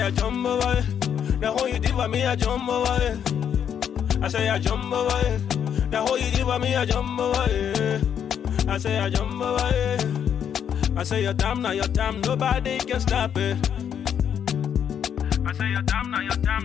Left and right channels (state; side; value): quieter; right; 8.6 dB